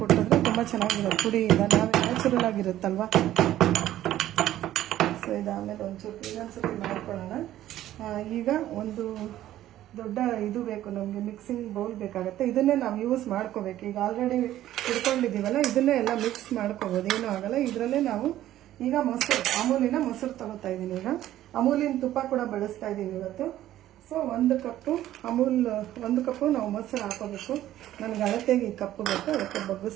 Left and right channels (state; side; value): quieter; left; 13.3 dB